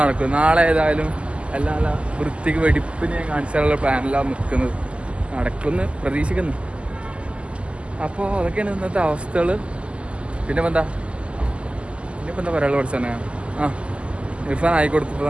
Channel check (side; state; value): left; late; 0.055 ms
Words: നാളെ ഏതായാലും എല്ലാം നല്ല വൃത്തിക്ക് വെടിപ്പിന് ഞാൻ കാണിച്ചാലുള്ള പ്ലാനെല്ലാം നിൽക്കുന്നത്, നടക്കുമെന്ന് പ്രതീക്ഷിക്കുന്നു. അപ്പോൾ അതൊക്കെയാണ് ഇന്നത്തെ അവസ്ഥകൾ. പിന്നെ എന്താ പറയാനുള്ള പഠിച്ചാൽ ഇർഫാൻ